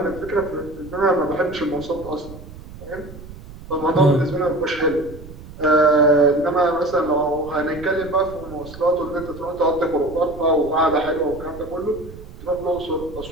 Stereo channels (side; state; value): right; noise; rumble, 16 dB below the sound